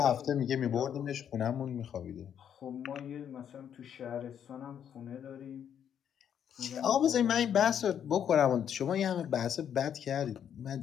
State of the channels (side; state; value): right; quieter; 8.9 dB